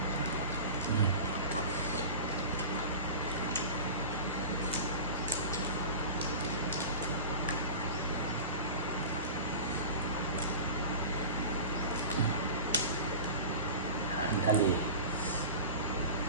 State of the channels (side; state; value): both; inverted; correlation -0.32